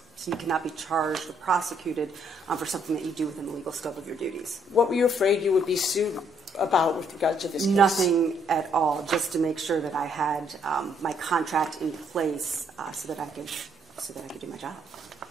be charged or prosecuted for something that you do within the legal scope of your duties. What were you afraid you would be sued about with regard to this case? Nothing at all, just to make sure that I had my contract in place so that I could do my job.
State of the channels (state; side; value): normal; both; correlation 0.69